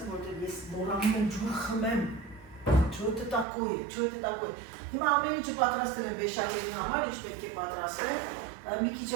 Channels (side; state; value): left; drops out; at 3.5 s